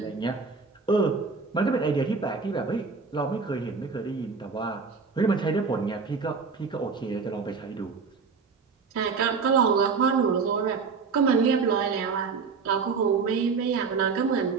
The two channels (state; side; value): quieter; left; 5.1 dB